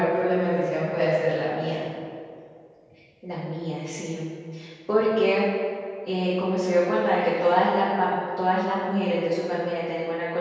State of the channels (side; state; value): both; identical; correlation 1.00